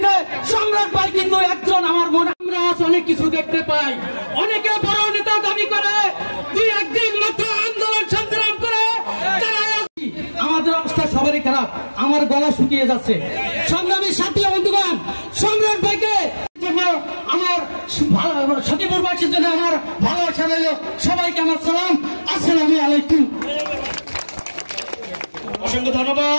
সম্রাট ভাই কিন্তু একজন। আমার মনে আমরা অনেক কিছু দেখতে পাই, অনেকে বড় নেতা দাবি করে, দুই একদিন মাত্র আন্দোলন সংগ্রাম করে আমাদের অবস্থা সবারই খারাপ। আমার গলা শুকিয়ে যাচ্ছে। সংগ্রামী সাথী বন্ধুগণ, সম্রাট ভাইকে জন্য আমার সখীপুরবাসীর জন্য আমার ভালোবাসা রইল। সবাইকে আমার সালাম, আসসালামু আলাইকুম। অসংখ্য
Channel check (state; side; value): inverted; both; correlation -1.00